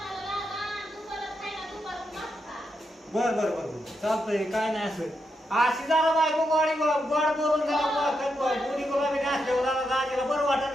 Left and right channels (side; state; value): both; normal; correlation 0.84